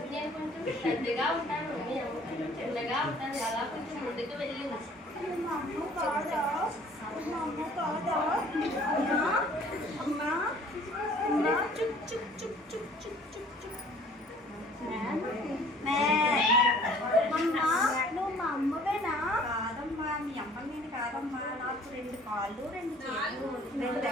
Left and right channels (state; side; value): normal; both; correlation 0.53